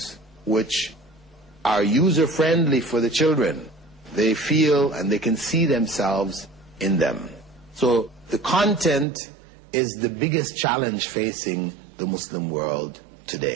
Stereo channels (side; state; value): left; drops out; at 9.1 s